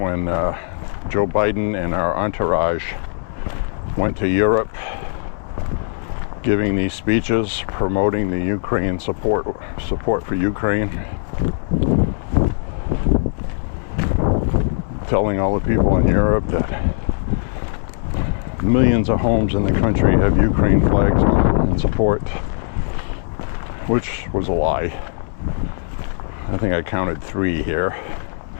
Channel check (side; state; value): right; silent; 66 dB below the other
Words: Joe Biden and our entourage went to Europe giving these speeches promoting the Ukraine support for Ukraine. Telling all the people in Europe that millions of homes in the country have Ukraine flags on in support, which was a lie. I think I counted 3 here.